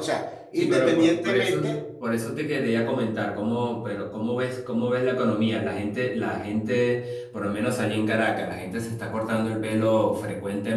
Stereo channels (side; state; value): both; identical; correlation 1.00